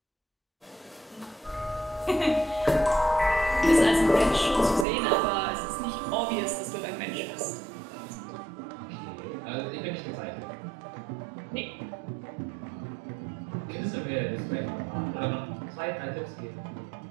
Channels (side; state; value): left; drops out; at 4.9 s